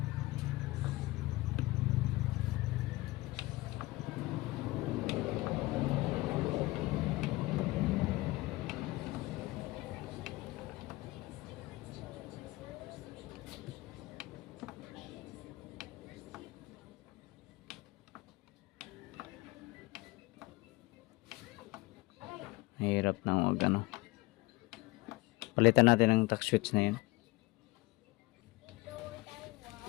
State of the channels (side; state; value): right; quieter; 21.0 dB